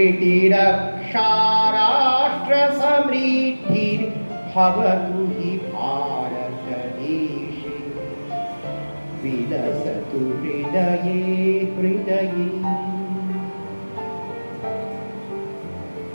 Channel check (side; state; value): both; inverted; correlation -1.00